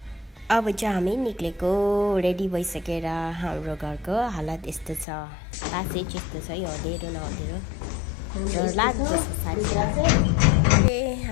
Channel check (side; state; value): right; drops out; at 5.1 s